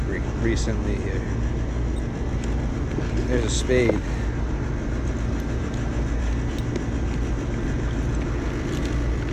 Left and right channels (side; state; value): both; identical; correlation 1.00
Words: recently here. There's a spade.